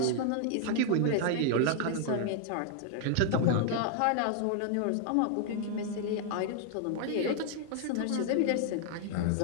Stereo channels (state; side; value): different; both; correlation 0.00